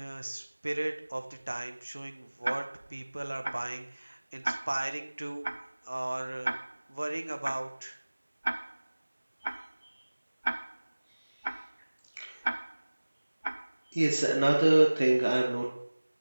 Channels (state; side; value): inverted; both; correlation -1.00